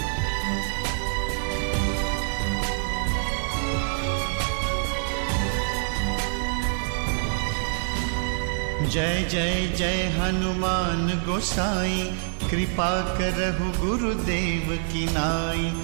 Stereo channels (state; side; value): silent; left; digital silence